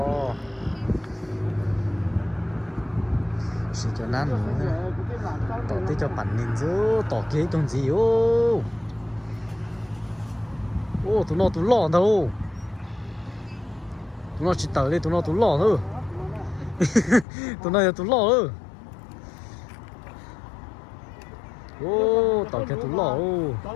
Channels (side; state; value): right; drops out; at 17.2 s